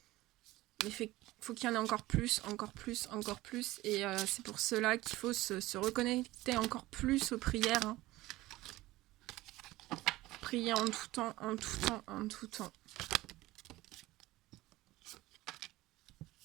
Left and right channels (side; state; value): left; quieter; 18.1 dB